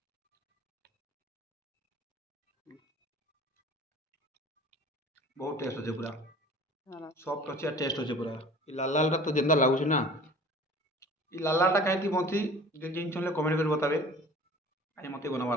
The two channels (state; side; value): normal; both; correlation 0.45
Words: बहुत टेस्ट अच्छे पूरा सॉफ्ट अच्छे टेस्ट अच्छे पूरा। लाल लाल तो जेंदा लागुचे ना ये लाल लाल कहीं बनती जिन कमेंट कर बतावे आज मत